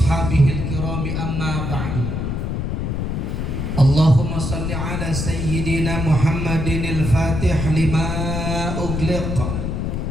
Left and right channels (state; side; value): noise; left; rumble, 2 dB below the sound